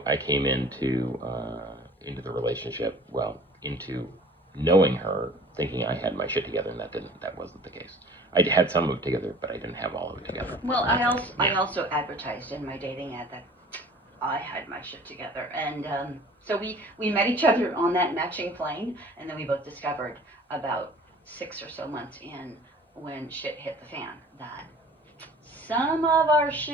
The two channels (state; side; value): normal; both; correlation 0.47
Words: came into the relationship, well, into knowing her, thinking I had my shit together, and that wasn't the case. I had some of it together, but I didn't have all of it together. Well, I also advertised in my dating ad that I had my shit together, and so we met each other on that matching plane, and then we both discovered about 6 or so months in, when shit hit the fan, that some of our